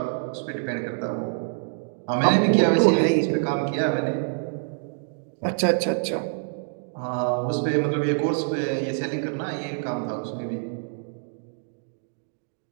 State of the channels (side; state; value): left; silent; digital silence